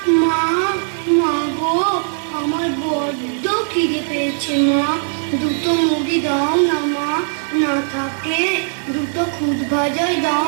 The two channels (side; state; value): left; silent; digital silence